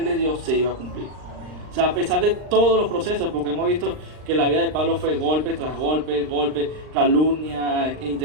le dio se iba a cumplir. O sea, a pesar de todos los procesos, porque hemos visto que la vida de Pablo fue golpe tras golpe, calumnia,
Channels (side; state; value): left; late; 39 ms